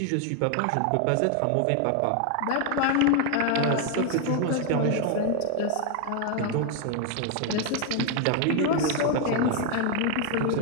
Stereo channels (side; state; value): both; different; correlation 0.01